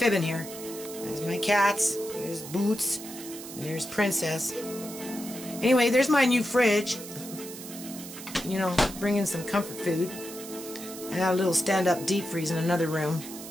here. There's my cats, there's Boots, and there's Princess. Anyway, there's my new fridge. You know, bringing some comfort food. I got a little stand-up deep freeze in another room.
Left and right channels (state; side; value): noise; right; hiss, 12 dB below the sound